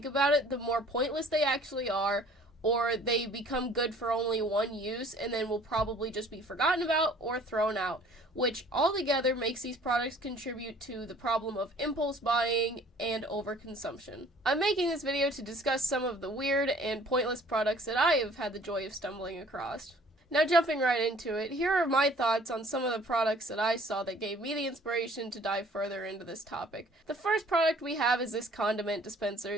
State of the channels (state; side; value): normal; both; correlation 0.54